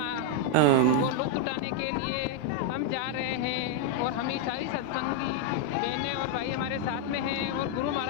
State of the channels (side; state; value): both; different; correlation 0.00